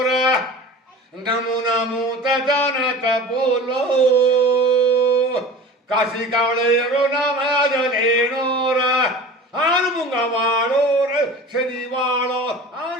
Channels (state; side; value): normal; both; correlation 0.37